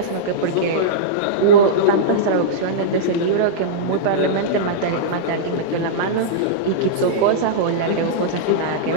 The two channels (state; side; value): different; both; correlation -0.04